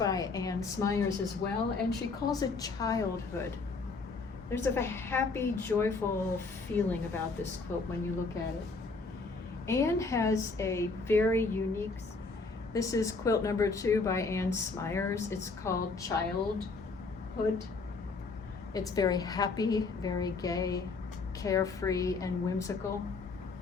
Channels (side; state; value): right; quieter; 4.0 dB